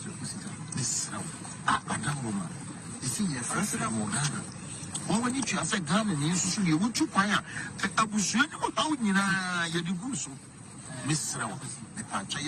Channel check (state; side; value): identical; both; correlation 1.00